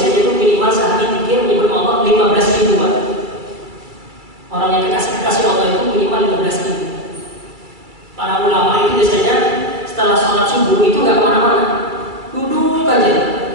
itu minimal sehari zikir menyebut Allah 15.000, Pak. Orang yang kasih Allah itu minimal 15.000. Para ulama itu biasanya setelah sholat subuh itu nggak kemana-mana, duduk aja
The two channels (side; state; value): left; late; 2.3 ms